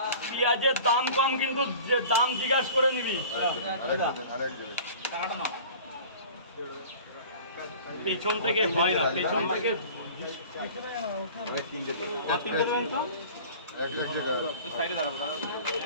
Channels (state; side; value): inverted; both; correlation -0.42